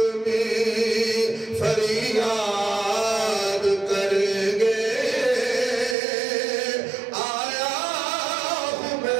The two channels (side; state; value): left; drops out; at 6.0 s